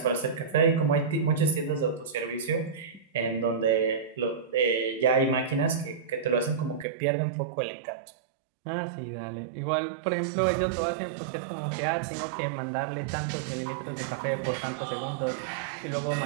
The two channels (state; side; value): drops out; left; at 6.9 s